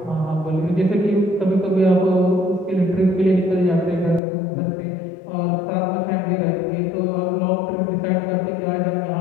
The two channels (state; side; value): drops out; right; at 4.2 s